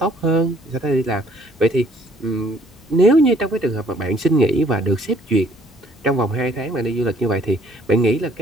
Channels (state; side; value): normal; both; correlation 0.60